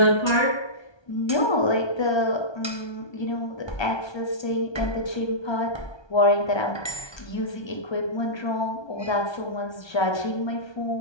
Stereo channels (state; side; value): late; right; 1.2 ms